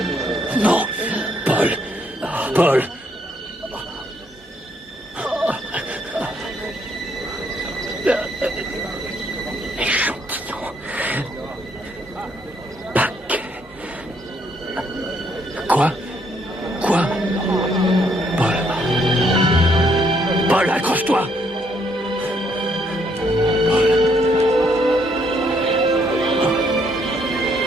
Non, Paul. Paul. Échantillon. Paquet. Quoi? Quoi? Paul. Paul, accroche-toi.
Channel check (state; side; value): normal; both; correlation 0.71